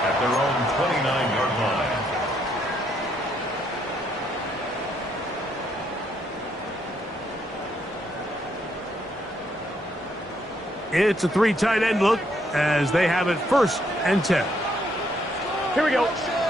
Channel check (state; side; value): normal; both; correlation 0.73